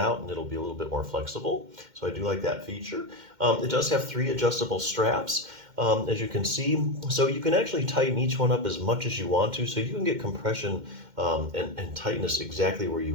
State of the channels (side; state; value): left; late; 2.1 ms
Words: and it'll be a little bit more flexible. So I do like that feature. It does have 3 adjustable straps, as you can see. So you can actually tighten each one up as much as you want to. So you can get compression and tightness exactly where